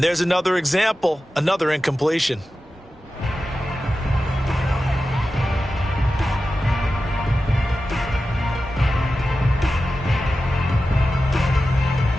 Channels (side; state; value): both; normal; correlation 0.93